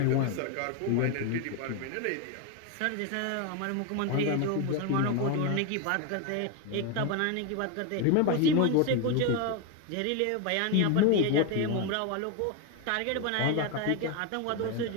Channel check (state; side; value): different; both; correlation 0.02